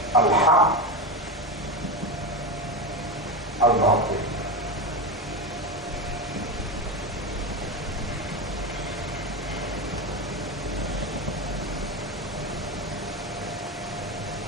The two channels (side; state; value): both; normal; correlation 0.17